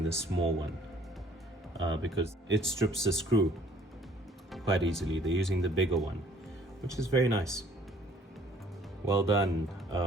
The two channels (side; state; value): both; normal; correlation 0.57